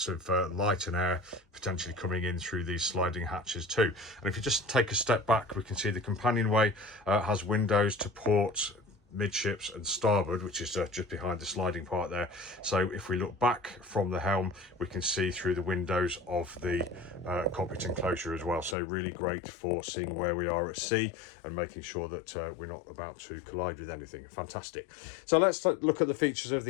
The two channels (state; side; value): drops out; right; at 18.8 s